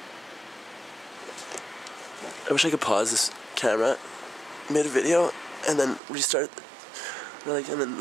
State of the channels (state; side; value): drops out; left; at 6.0 s